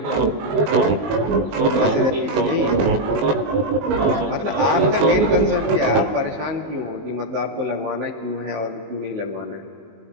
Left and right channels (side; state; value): left; late; 19 ms